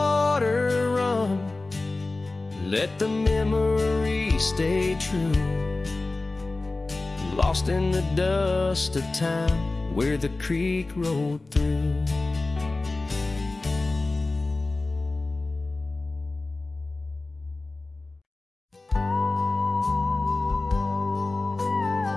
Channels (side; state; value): right; quieter; 3.2 dB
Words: run, let the memory stay true, lost in the dust of time where the creek rolled through.